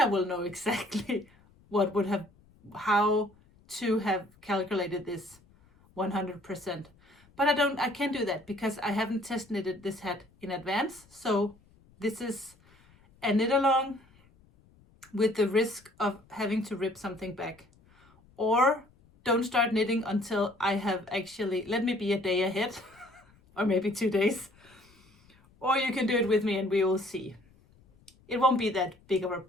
I will know exactly how to have calculated this 100%. But I can't do that because I haven't test knitted this hat in advance. So this is a knit along with the risk of having to rip something back. Or don't start knitting until I have actually, let me be a day ahead or maybe 2 days. Or you can do it with me and we will see. It won't be that big of a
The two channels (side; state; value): left; noise; rumble, 29 dB below the sound